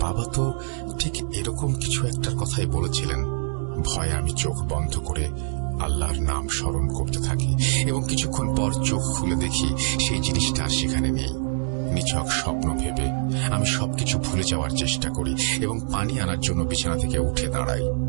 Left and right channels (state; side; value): silent; left; digital silence